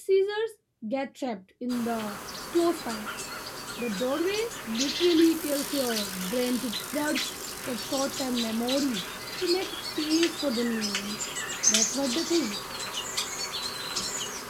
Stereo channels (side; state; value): both; identical; correlation 1.00